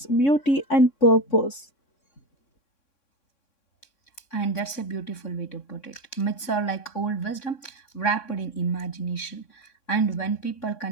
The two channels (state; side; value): late; right; 3.6 ms